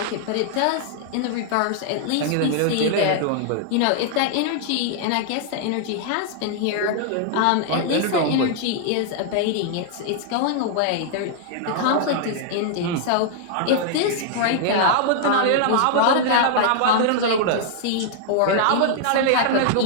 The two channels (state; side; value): different; both; correlation -0.01